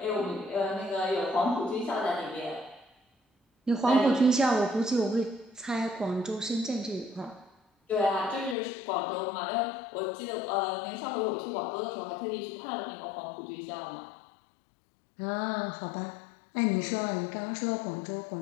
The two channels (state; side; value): drops out; right; at 8.6 s